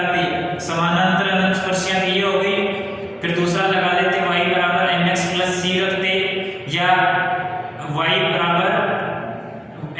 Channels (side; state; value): both; identical; correlation 1.00